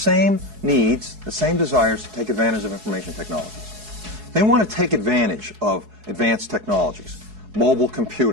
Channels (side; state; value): left; late; 4.7 ms